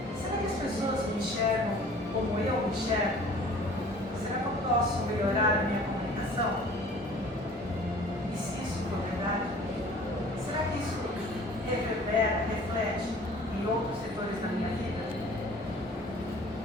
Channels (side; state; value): both; normal; correlation 0.48